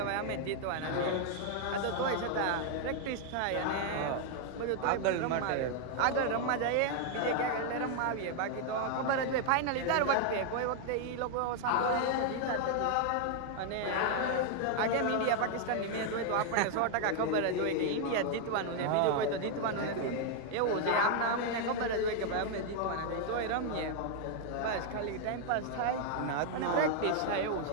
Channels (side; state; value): both; different; correlation 0.00